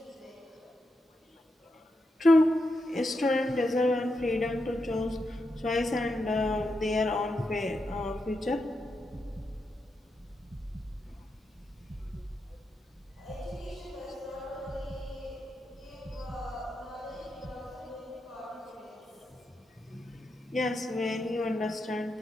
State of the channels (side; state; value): both; normal; correlation 0.85